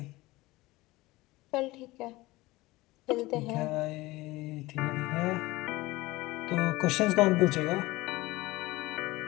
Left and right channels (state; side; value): quieter; right; 20.0 dB